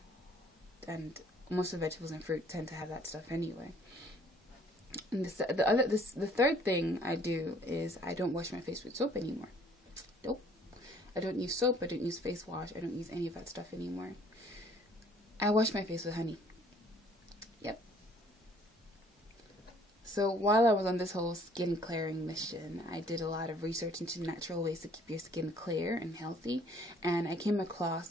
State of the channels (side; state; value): both; normal; correlation 0.58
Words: most of the vegetables and fruit tend to have that stuff anyway. And the third thing I do is I don't wash my face with soap anymore. Nope. I don't use soap. I don't use face wash. I don't use any of that stuff anymore. I wash my face with honey. Yep. So while I was on this whole skin clearing mission, I did a lot of research into natural ways to keep your skin clear and healthy, and I came